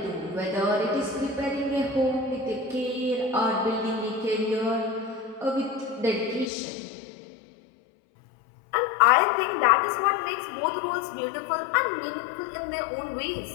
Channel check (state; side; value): drops out; right; at 6.5 s